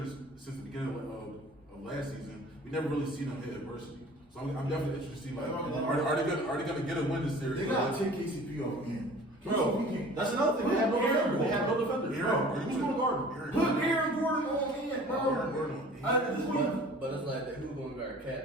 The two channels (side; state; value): both; normal; correlation 0.46